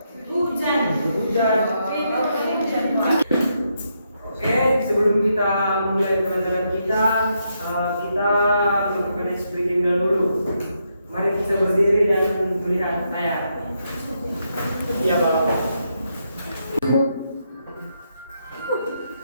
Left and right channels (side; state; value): both; inverted; correlation -0.80